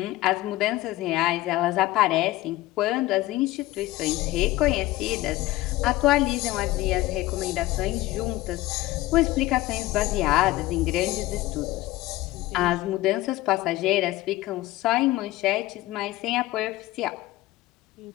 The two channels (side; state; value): right; quieter; 17.5 dB